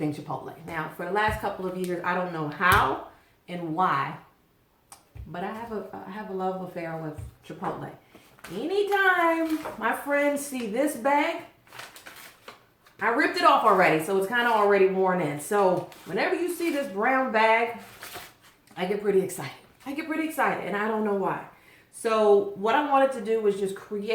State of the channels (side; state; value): both; identical; correlation 1.00